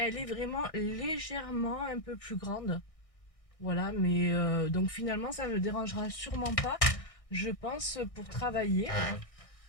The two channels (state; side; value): late; right; 1.6 ms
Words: est vraiment légèrement un peu plus grande. Voilà, mais donc finalement, ça ne me dérangera sûrement pas, je pense, pour travailler.